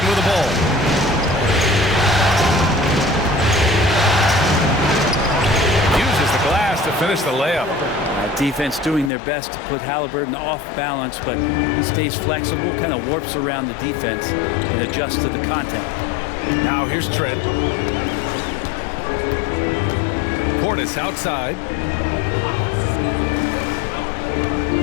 with the ball. Uses the glass to finish the layup. Defense doing their best to put Halliburton off balance, but he stays flexible, kind of warps around the defense and adjusts to the contact. Now here's Trent. Portis outside.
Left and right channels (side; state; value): right; drops out; at 9.1 s